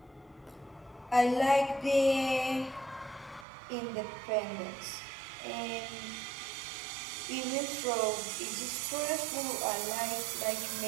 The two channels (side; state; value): left; drops out; at 3.5 s